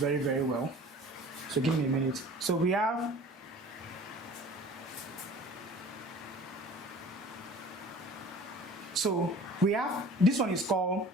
very well. So give me a minute. So we have this one is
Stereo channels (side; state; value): both; normal; correlation 0.45